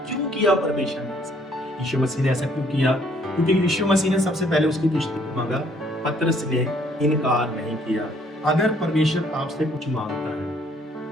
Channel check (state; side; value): normal; both; correlation 0.64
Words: क्यों किया परमेश्वर ने ऐसा? यीशु मसीह ने ऐसा क्यों किया? क्योंकि यीशु मसीह ने सबसे पहले उसकी किश्ती को मांगा, पतरस ने इनकार नहीं किया। अगर परमेश्वर आपसे कुछ मांगता